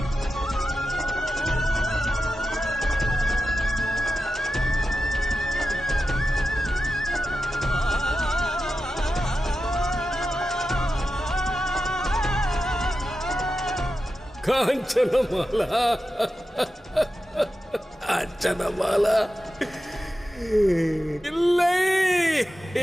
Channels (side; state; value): both; normal; correlation 0.91